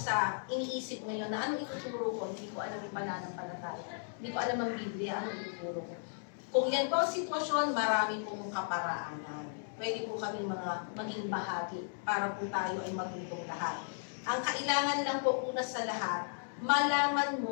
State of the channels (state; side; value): silent; right; digital silence